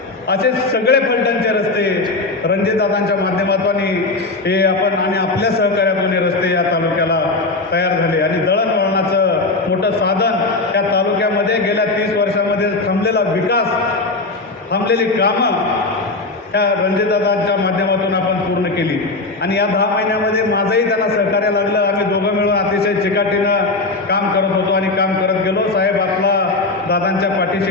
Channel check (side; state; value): right; quieter; 3.3 dB